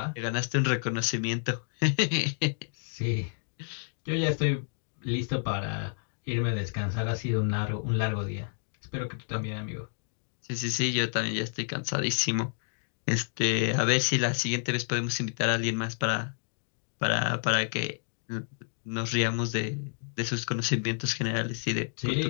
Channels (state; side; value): silent; right; digital silence